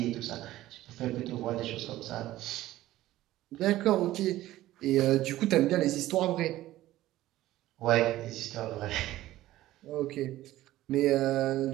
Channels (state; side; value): quieter; left; 15.4 dB